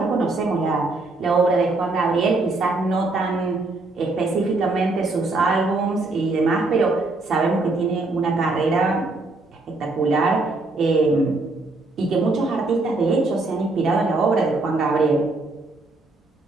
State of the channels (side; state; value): left; quieter; 3.2 dB